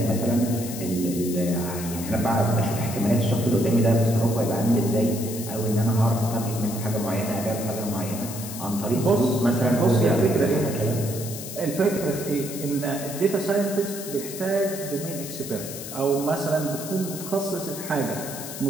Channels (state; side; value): noise; left; hiss, 10 dB below the sound